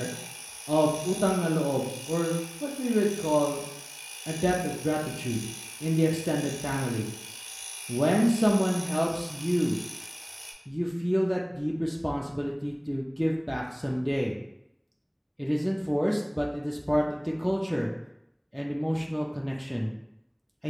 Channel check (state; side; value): identical; both; correlation 1.00